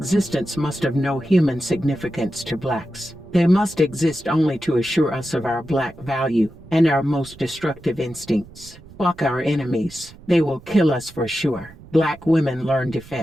must have no human significance to blacks. They must exist only to assure us of our black value and our most destructive instincts. Fuck our enemies. They will kill us for sure. Black women learn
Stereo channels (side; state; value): right; noise; rumble, 21 dB below the sound